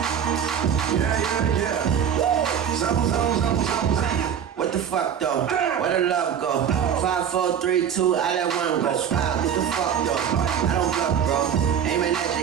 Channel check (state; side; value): quieter; left; 8.4 dB